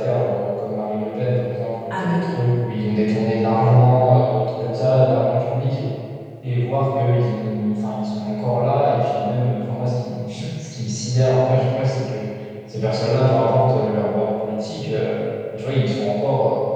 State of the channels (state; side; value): identical; both; correlation 1.00